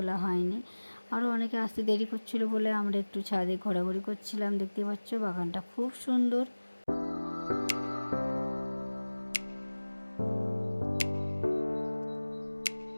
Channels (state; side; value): inverted; both; correlation -1.00